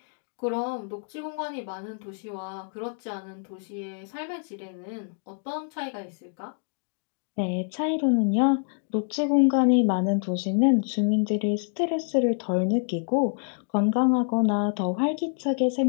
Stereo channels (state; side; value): silent; right; 60 dB below the other